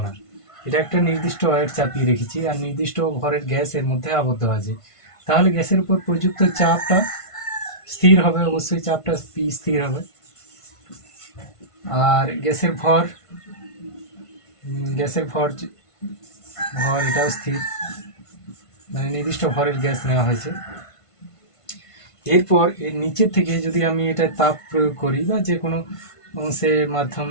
না, এটা একটা নির্দিষ্ট ওয়েট চাপিয়ে রেখেছি আর নির্দিষ্ট ভরের গ্যাস এর মধ্যে আবদ্ধ আছে। তাহলে গ্যাসের উপর প্রযুক্ত চাপটা স্থির হবে, অবশ্যই চাপটা পি স্থির হবে। আর গ্যাসের ভর এটাও স্থির, মানে নির্দিষ্ট ভরের গ্যাস নেওয়া হয়েছে। এরপর এর নিচের থেকে যদি আমি এটা তাপ প্রয়োগ করি বা যে কোনো অংশের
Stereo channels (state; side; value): late; right; 1.5 ms